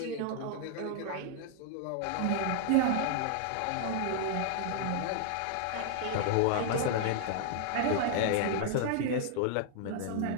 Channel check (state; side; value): different; both; correlation 0.00